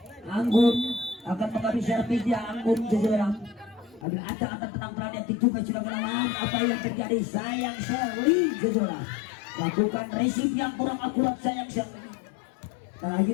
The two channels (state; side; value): drops out; right; at 4.0 s